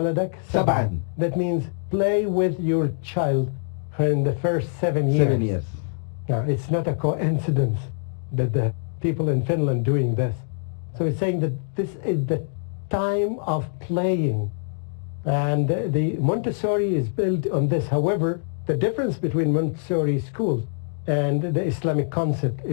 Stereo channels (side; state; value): right; silent; digital silence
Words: سبعا. That means play with your child in the first 7 years. 7 years. Now, it's not a coincidence that the people in Finland doing this. So it's saying that this is the time of playing. And the Montessori is built on this. However, the difference between Montessori schools and the Islamic concept